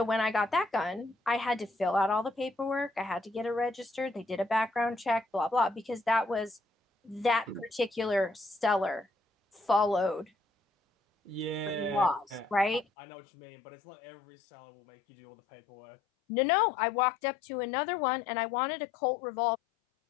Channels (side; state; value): right; drops out; at 12.9 s